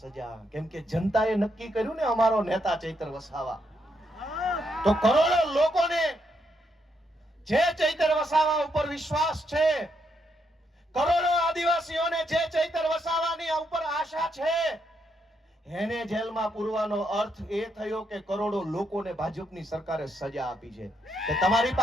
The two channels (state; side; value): normal; both; correlation 0.78